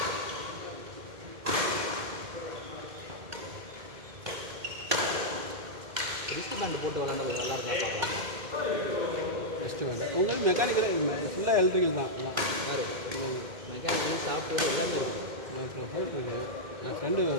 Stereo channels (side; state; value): left; late; 2.1 ms